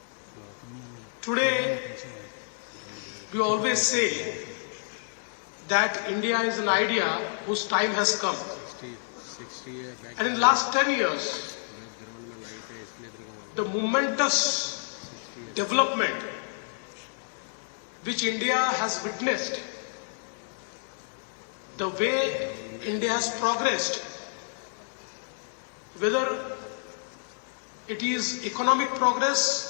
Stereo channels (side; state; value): right; silent; 58 dB below the other